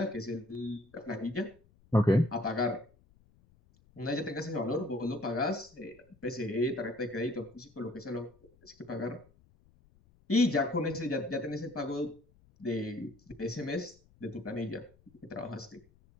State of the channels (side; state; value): left; noise; rumble, 29 dB below the sound